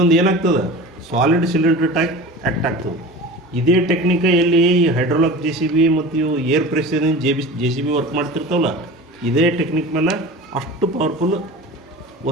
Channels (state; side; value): normal; both; correlation 0.34